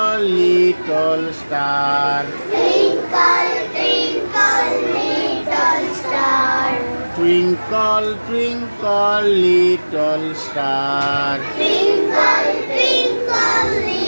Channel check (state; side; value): inverted; both; correlation -1.00